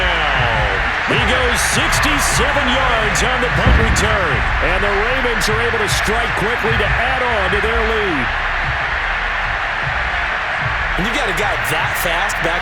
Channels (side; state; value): both; identical; correlation 1.00